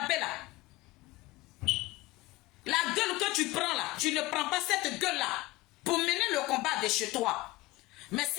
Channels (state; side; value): quieter; right; 19.7 dB